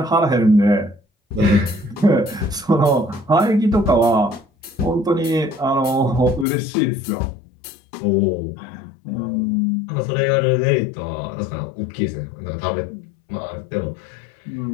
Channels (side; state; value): right; drops out; at 6.5 s